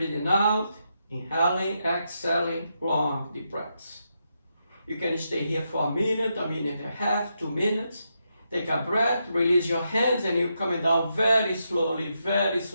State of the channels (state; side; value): inverted; both; correlation -0.83